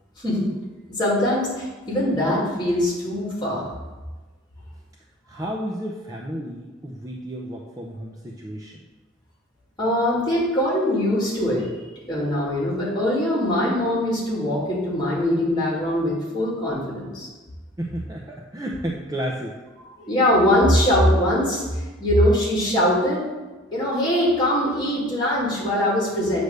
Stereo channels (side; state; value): both; normal; correlation 0.47